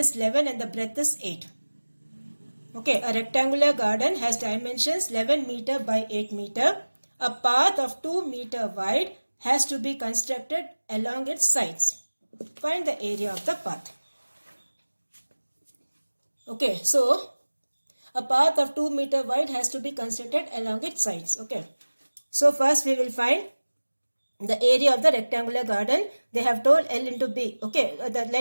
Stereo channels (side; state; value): both; inverted; correlation -1.00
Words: 11 and the breadth is 8. Okay, a rectangular garden has dimensions 11 meter by 8 meter. A path of 2 meter wide has to be constructed along its sides. Find the area of the path. Okay, so a path of 2 meter wide has to be constructed along its sides. Okay, so first we will find the area of the rectangular garden. They have told L into B. Okay, the